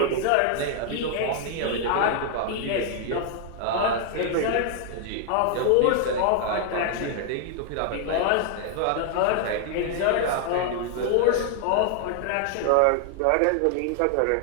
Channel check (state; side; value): different; both; correlation 0.00